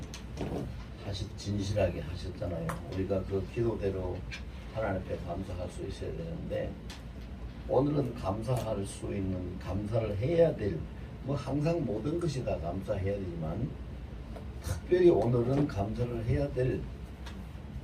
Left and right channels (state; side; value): identical; both; correlation 1.00